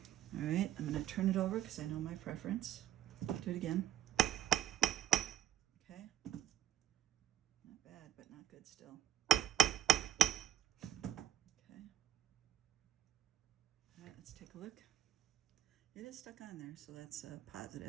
All right, I'm going to turn it over because I know my preference. Do it again. Okay. Not bad, but not good still. Okay. All right, let's take a look. It is stuck on there, so that's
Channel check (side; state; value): left; quieter; 12.0 dB